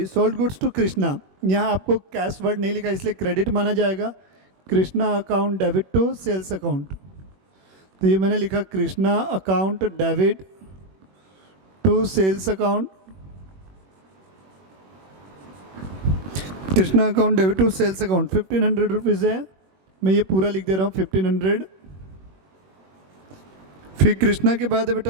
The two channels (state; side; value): late; left; 21 ms